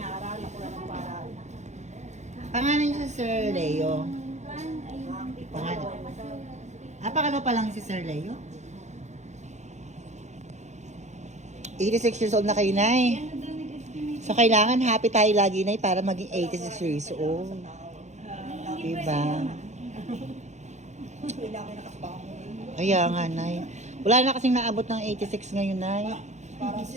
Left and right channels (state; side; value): late; left; 0.33 ms